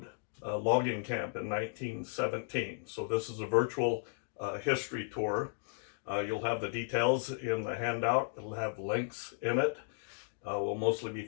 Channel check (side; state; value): right; silent; digital silence